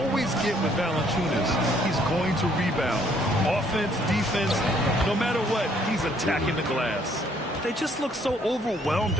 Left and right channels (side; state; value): both; normal; correlation 0.65